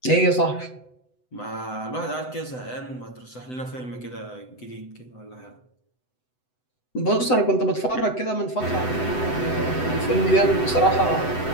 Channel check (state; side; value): late; right; 7.9 ms